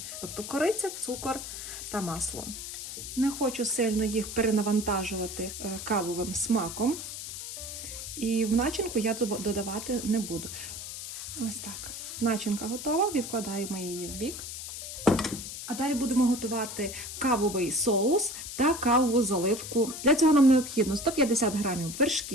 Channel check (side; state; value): left; noise; hiss, 8 dB below the sound